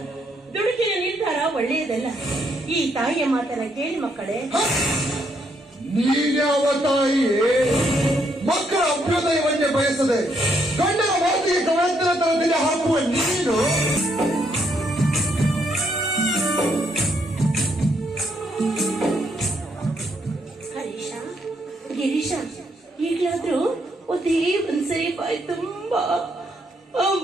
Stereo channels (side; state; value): both; normal; correlation 0.74